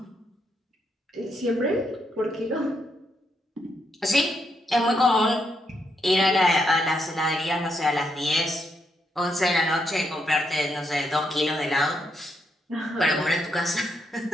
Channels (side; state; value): both; normal; correlation 0.78